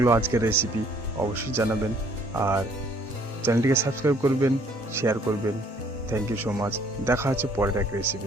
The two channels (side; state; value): both; normal; correlation 0.61